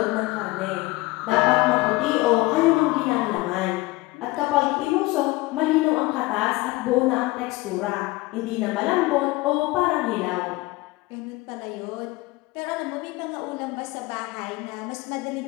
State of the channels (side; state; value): right; quieter; 21.3 dB